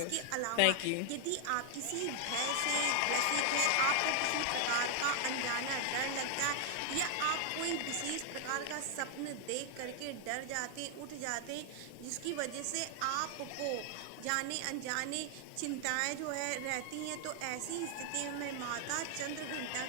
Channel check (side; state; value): both; different; correlation 0.00